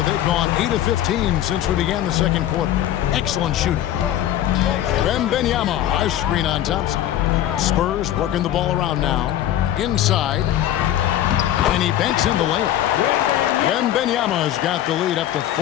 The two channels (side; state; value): right; quieter; 12.2 dB